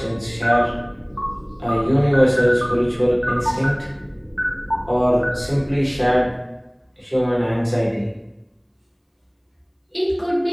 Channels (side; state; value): both; identical; correlation 1.00